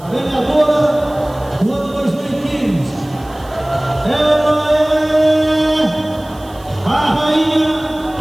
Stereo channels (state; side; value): noise; right; hiss, 25 dB below the sound